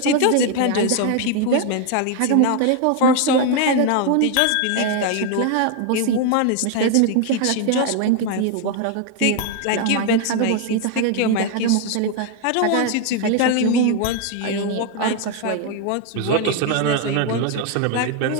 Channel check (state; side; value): different; both; correlation 0.01